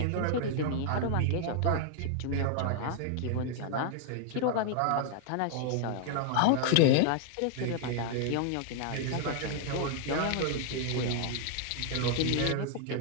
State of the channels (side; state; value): both; different; correlation 0.00